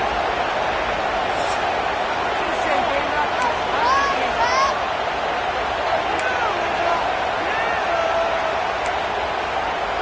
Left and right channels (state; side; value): identical; both; correlation 1.00